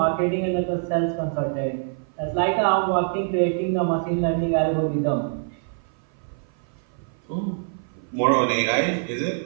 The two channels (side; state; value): left; silent; 56 dB below the other